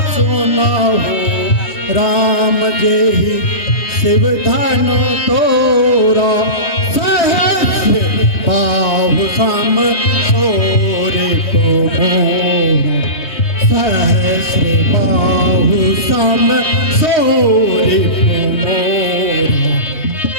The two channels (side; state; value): right; late; 3.1 ms